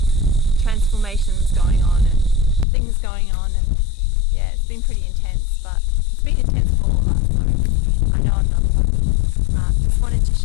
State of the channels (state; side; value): drops out; right; at 2.7 s